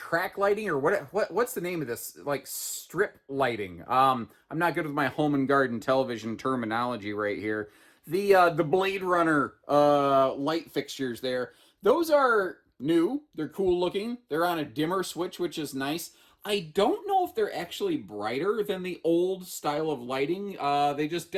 lighting, or what's the name of this? Like strip lighting. I'm not good with my home and garden television terminology right here. The Blade Runner light fixtures there. Those are new. They're cool looking. They're on a dimmer switch, which is nice. I don't know if they're actually brighter than the old style of lighting. They just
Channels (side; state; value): both; identical; correlation 1.00